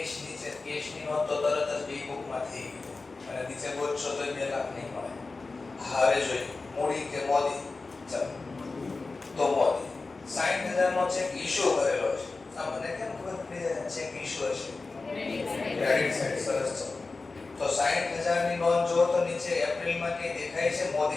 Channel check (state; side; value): quieter; right; 3.8 dB